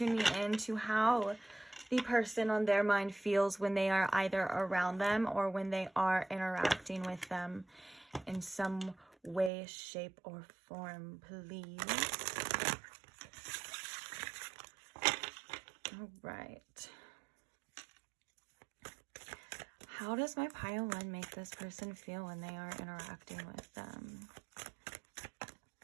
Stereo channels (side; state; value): left; drops out; at 9.5 s